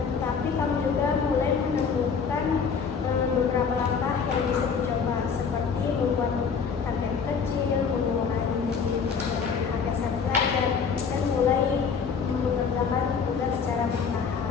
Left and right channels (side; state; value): right; quieter; 6.0 dB